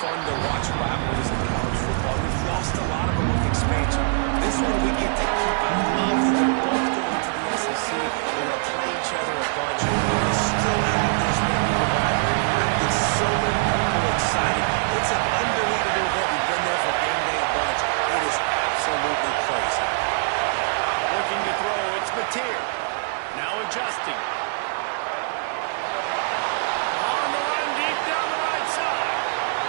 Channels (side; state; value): left; silent; 63 dB below the other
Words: to watch rivalries in college football. We've lost a lot of them with expansion. This one we get to keep. I love that they're both going to the SEC. We're going to play each other a bunch. We're going to still have this rivalry. It gets so many people excited. It's an unbelievable event. We've been there for game day a bunch. It is absolutely crazy. Looking to throw, it's Mateer. Now adjusting. On the run, deep down the right side.